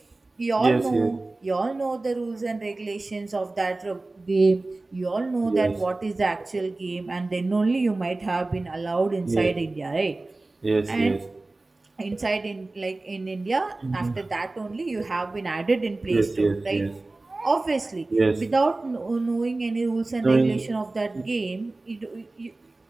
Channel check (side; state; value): left; quieter; 3.1 dB